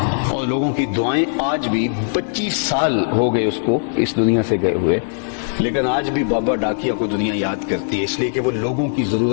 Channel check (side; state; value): right; silent; digital silence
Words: اور لوگوں کی دعائیں آج بھی 25 سال ہو گئے اس کو اس دنیا سے گئے ہوئے، لیکن آج بھی بابا ڈاکیا کو دنیا یاد کرتی ہے، اس لیے کہ وہ لوگوں کی